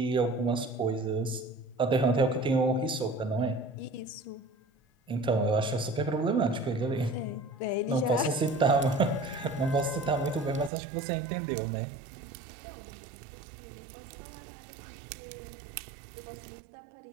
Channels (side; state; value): left; drops out; at 10.7 s